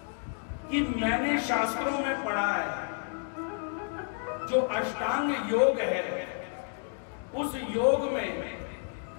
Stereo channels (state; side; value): silent; right; 57 dB below the other